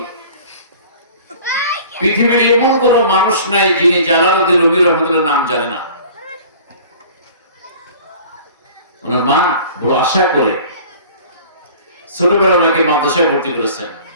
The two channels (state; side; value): inverted; both; correlation -0.45